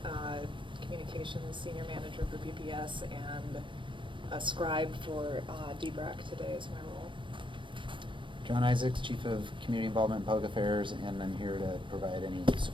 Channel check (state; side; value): late; left; 0.24 ms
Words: Communications Senior Manager for PPS and a scribe for DBRAC today is my role. John Isaacs, Chief of Community Involvement and Public Affairs, and I'm here to provide any